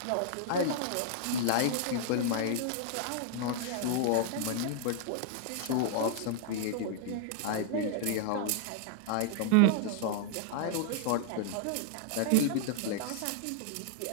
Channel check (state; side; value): different; both; correlation 0.00